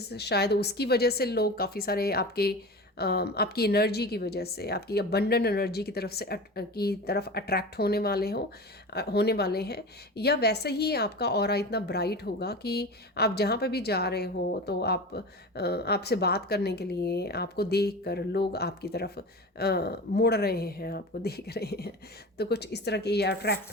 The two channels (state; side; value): normal; both; correlation 0.31